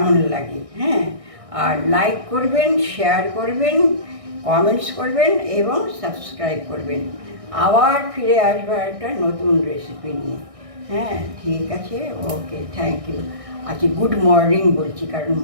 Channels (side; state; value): left; late; 1.6 ms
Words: লাগে। আর লাইক করবেন, শেয়ার করবেন, কমেন্টস করবেন এবং সাবস্ক্রাইব করবেন। আবার ফিরে আসবো একটা নতুন রেসিপি নিয়ে। ঠিক আছে, ওকে, থ্যাংক ইউ। আচ্ছা গুড মর্নিং বলছি, কারণ